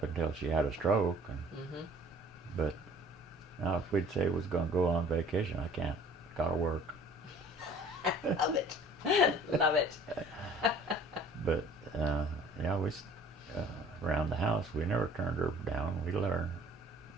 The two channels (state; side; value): normal; both; correlation 0.51